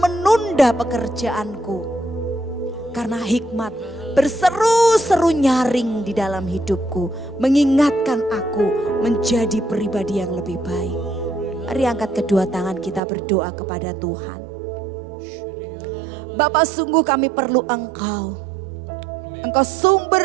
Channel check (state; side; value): drops out; left; at 13.0 s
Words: pekerjaanku. Karena hikmat berseru-seru nyaring di dalam hidupku. Mengingatkan aku menjadi pribadi yang lebih baik. Mari angkat kedua tangan kita berdoa kepada Tuhan. Bapa, sungguh kami perlu Engkau. Engkau